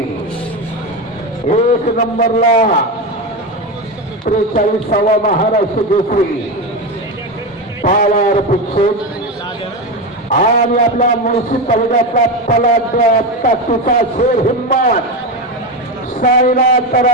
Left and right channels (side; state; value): both; normal; correlation 0.16